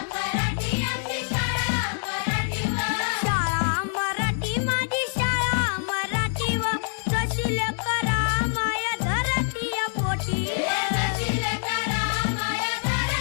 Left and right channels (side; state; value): right; silent; 61 dB below the other